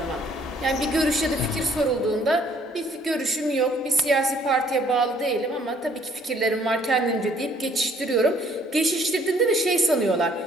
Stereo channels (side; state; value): both; normal; correlation 0.61